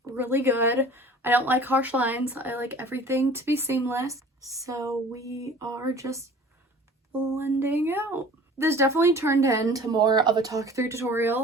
really good. I don't like harsh lines. I like everything to be seamless. So we are just blending out. This definitely turned into more of a talk through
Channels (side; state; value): both; normal; correlation 0.45